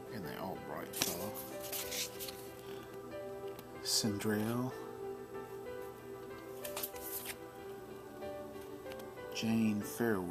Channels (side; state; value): both; identical; correlation 1.00